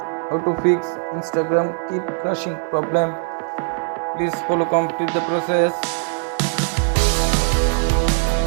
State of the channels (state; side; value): silent; left; digital silence